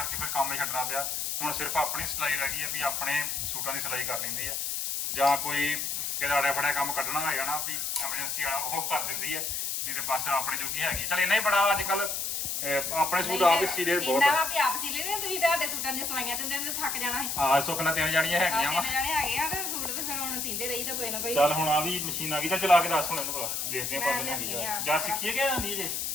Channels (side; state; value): left; noise; hiss, 1 dB below the sound